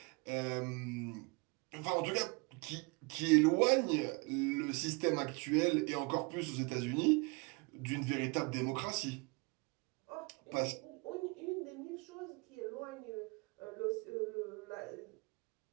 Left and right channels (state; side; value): quieter; left; 29.4 dB